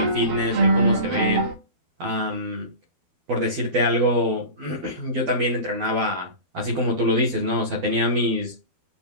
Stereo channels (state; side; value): late; left; 12 ms